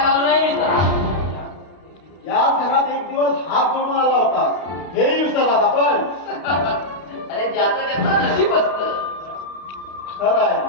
आलो नाही मी तर. याच घरात एक दिवस हात जोडून आला होता, हेही विसरलात आपण. अरे ज्याचं त्याचं नशीब असतं. खरं आहे.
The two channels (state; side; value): late; right; 32 ms